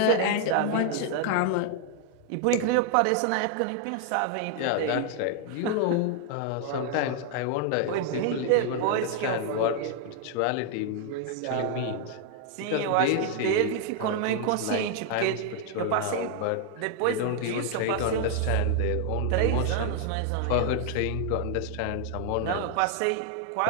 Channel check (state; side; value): different; both; correlation 0.00